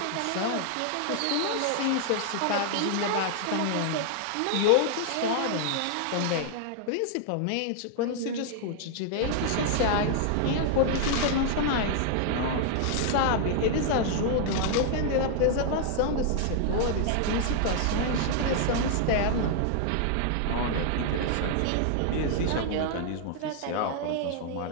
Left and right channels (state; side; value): different; both; correlation 0.00